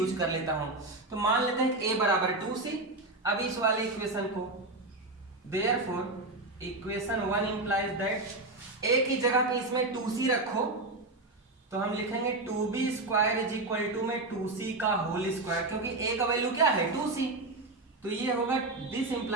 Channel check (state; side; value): quieter; left; 3.0 dB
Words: कर लेता हूं। तो मान लेते हैं कि a बराबर 2c। अब इस वाले इक्वेशन को, therefore equation 1 implies that a की जगह पे इसमें 2c रखो, तो हम लिखेंगे 2b square is equal to में 2c का होल स्क्वायर, क्योंकि a का वैल्यू क्या है, 2c। तो ये होगा, this